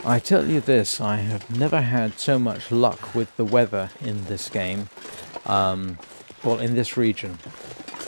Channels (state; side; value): inverted; both; correlation -1.00